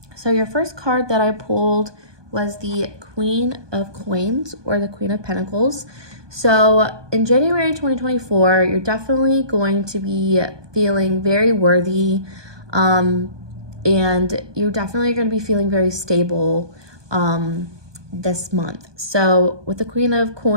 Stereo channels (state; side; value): late; left; 1.2 ms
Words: So your first card that I pulled was the Queen of Coins, or the Queen of Pentacles. So in January 2024, you're definitely going to be feeling very worthy, and you're definitely going to be feeling very stable this month. So with the Queen of